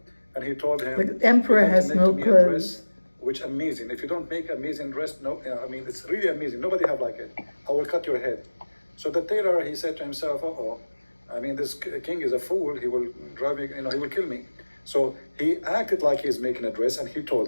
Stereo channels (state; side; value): inverted; both; correlation -1.00